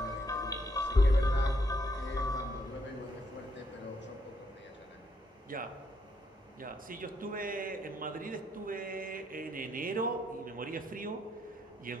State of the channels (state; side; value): normal; both; correlation 0.75